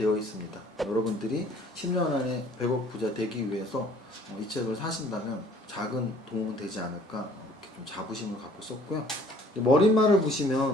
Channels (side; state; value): both; normal; correlation 0.55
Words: 있습니다. 여러분들이 10년 안에 100억 부자 되기 위해서 이 책을 사신다면 작은 도움은 되지 않을까 이렇게 좀 자부심을 갖고 썼고요. 머릿말을